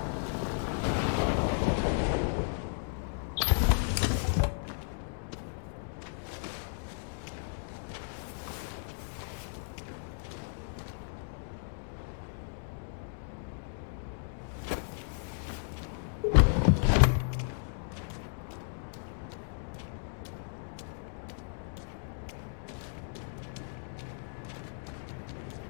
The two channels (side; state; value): right; silent; digital silence